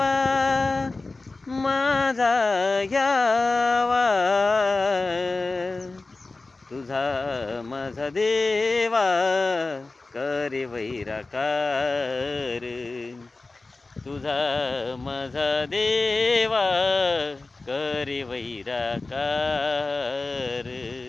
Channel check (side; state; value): right; quieter; 3.4 dB